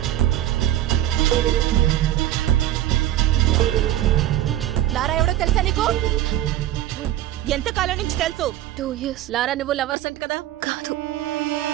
లారా ఎవడో తెలుసా నీకు? ఎంత కాలం నుంచి తెలుసు? 2 years. లారా నువ్వు లవర్స్ అంట కదా? కాదు.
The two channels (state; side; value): quieter; left; 13.5 dB